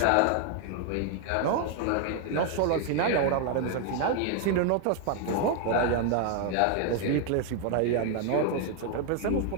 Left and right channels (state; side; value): different; both; correlation 0.00